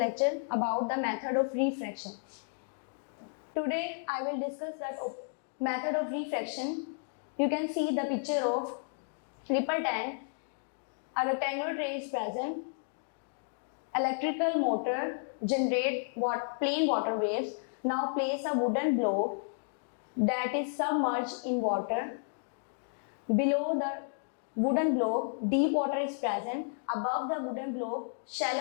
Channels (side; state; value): right; silent; digital silence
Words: lecture about the method of refraction. Today I will discuss that method of refraction. You can see the picture of ripple tank. A rectangular tray is present. Electrical motor generate plain water waves. Now place a wooden block that is submerged in water. Below the wooden block, deep water is present. Above the wooden block,